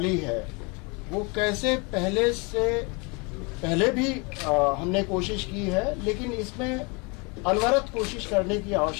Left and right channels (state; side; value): quieter; right; 30.3 dB